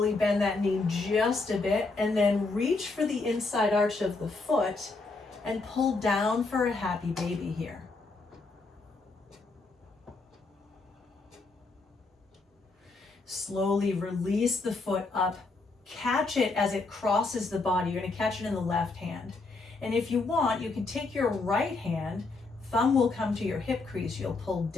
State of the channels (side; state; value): right; quieter; 3.7 dB